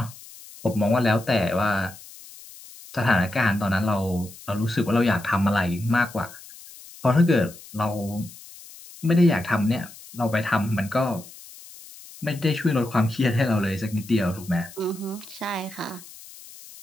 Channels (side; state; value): left; noise; hiss, 18 dB below the sound